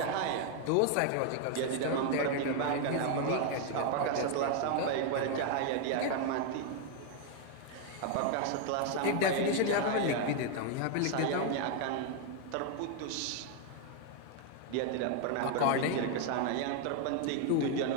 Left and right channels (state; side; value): different; both; correlation 0.00